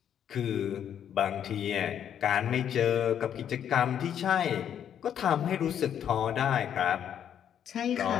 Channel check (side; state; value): right; quieter; 9.3 dB